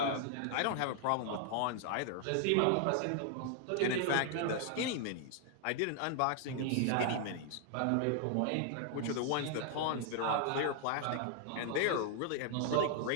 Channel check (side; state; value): both; different; correlation 0.00